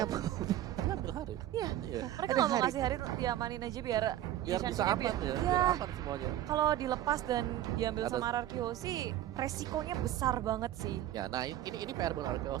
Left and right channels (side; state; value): left; quieter; 12.8 dB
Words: Diambil Harit. Iya. Iya. Mereka Ada nggak mau Harit. ngasih Harit diamanin aja biar Biar bisa Sunshine-nya aman ya, Iya. biar aman semuanya. Kalau dilepas dan diambil Atas- sama Ararkio sih resikonya besar banget sih. Ya, nah ini PR buat